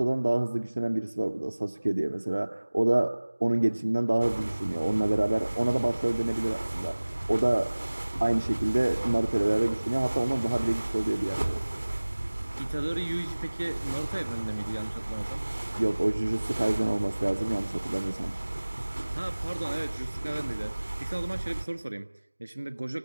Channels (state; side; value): inverted; both; correlation -1.00